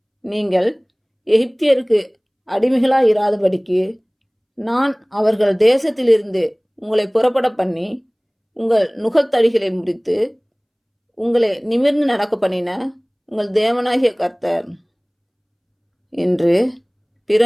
நீங்கள் எகிப்தியருக்கு அடிமைகளாயிராதபடிக்கு நான் அவர்கள் தேசத்திலிருந்து உங்களை புறப்பட பண்ணி உங்கள் நுகத்தடிகளை முறித்து உங்களை நிமிர்ந்து நடக்க பண்ணின உங்கள் தேவனாகிய கர்த்தர். இன்று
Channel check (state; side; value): identical; both; correlation 1.00